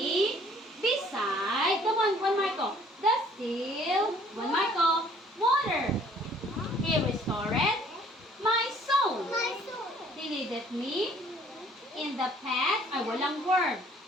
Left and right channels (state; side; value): normal; both; correlation 0.57